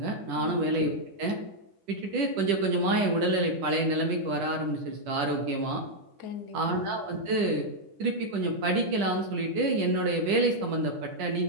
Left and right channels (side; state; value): left; late; 10 ms